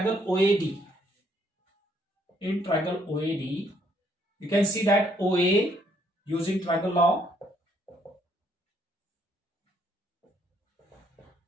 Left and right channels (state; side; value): normal; both; correlation 0.68